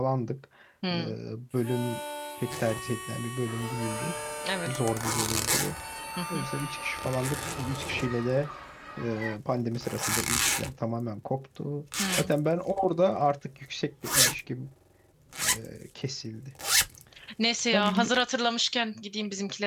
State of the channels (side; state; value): both; identical; correlation 1.00